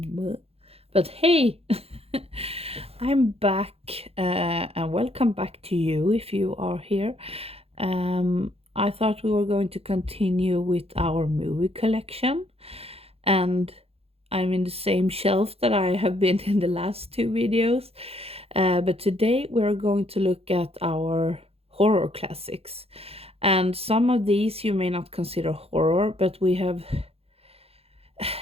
hey, I'm back and welcome back to you if you are here. I thought we were going to continue with our movie collection, and I'm in the same shelf that I have been in the last two videos. But today we're going to look at our horror classics. And some of these you may not consider horror, but we have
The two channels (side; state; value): left; late; 0.29 ms